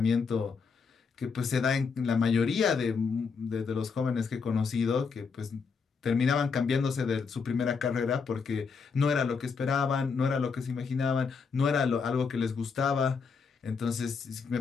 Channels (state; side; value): quieter; right; 5.4 dB